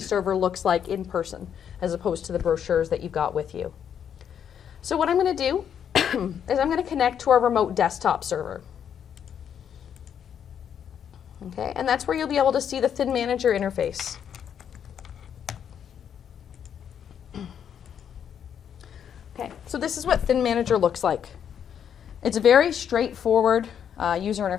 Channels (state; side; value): quieter; right; 8.5 dB